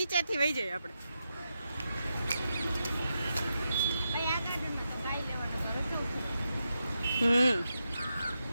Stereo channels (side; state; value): both; inverted; correlation -0.87